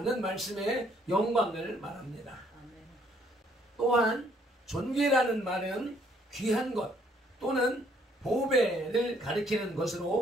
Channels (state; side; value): normal; both; correlation 0.65